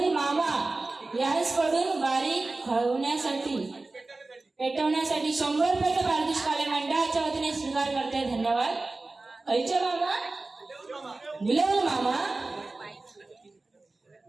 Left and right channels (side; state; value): left; quieter; 3.3 dB